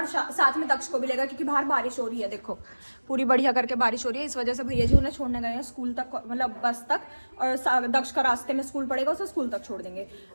साथ में दक्ष को भी लेगा क्योंकि बाहर बारिश हो रही है। देखो पूरी बढ़िया करके बारिश हो रही है, इस वजह से भैया जी उन्हें छोड़ने गए हैं स्कूल तक, मतलब बस तक। और दक्ष का रास्ते में स्कूल पड़ेगा, उसे स्कूल तक छोड़ देंगे।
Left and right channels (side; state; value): both; inverted; correlation -1.00